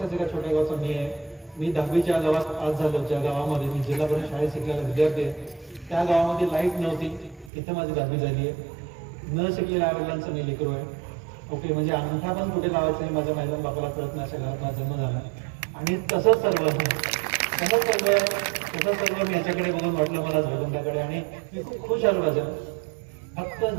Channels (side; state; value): left; drops out; at 7.5 s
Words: एका छोट्या गावाचं मी आहे. मी 10वीच्या गावात पास झालो, ज्या गावामध्ये मी जिल्हा परिषद शाळेत शिकलेला विद्यार्थी आहे. त्या गावामध्ये लाईट नव्हती, इथं माझी 10वी झाली आहे. न शिकलेल्या आईवडिलांचं मी लेकरू आहे ओके. म्हणजे अंगठा पण कुठे लावायचं नाही माझ्या माझ्या बापाला कळत नाही, अशा घरात माझा जन्म झाला. आणि तसंच सर्व मी याच्याकडे बघून वाटलं मला भगवंताकडे आणि मी खूप खुश आलो राजा. फक्त